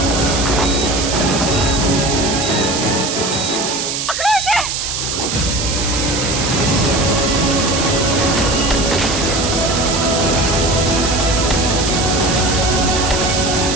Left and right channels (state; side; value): noise; right; hiss, 3 dB below the sound